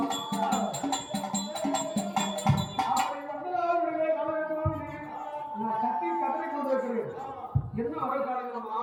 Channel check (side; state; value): both; identical; correlation 1.00